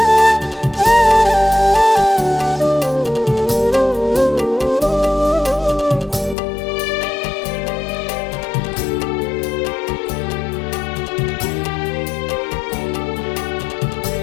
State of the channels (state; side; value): drops out; right; at 6.4 s